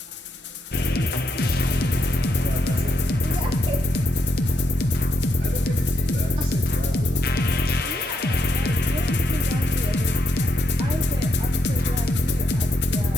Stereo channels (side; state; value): both; normal; correlation 0.78